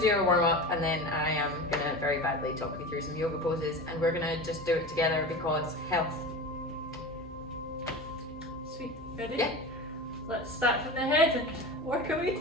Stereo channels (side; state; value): both; normal; correlation 0.30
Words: do a warm up and then I am gonna very badly talk you through some yoga poses and we're gonna just do it together because health. Sweet. Ready? Yeah. Let's start from the head and work our way